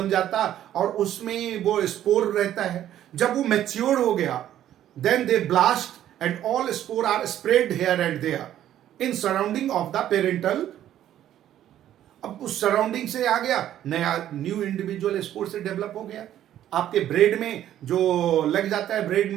जाता और उसमें वो स्पोर रहता है। जब वो मैच्योर हो गया, then they blast and all spore are spread here and there in surrounding of the parental. अब उस सराउंडिंग से आ गया, नया न्यू इंडिविजुअल स्पोर से डेवलप हो गया। आपके ब्रेड में जो लग जाता है ब्रेड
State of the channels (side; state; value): left; quieter; 11.7 dB